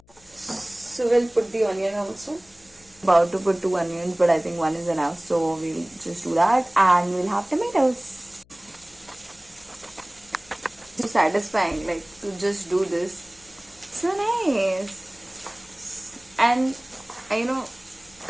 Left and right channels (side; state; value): left; noise; hum, 29 dB below the sound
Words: So we'll put the onion also. About to put 2 onions, but I think 1 is enough, so we'll just do that, and we'll have tomatoes. It's satisfying, like, to just do this. So nice. And you know,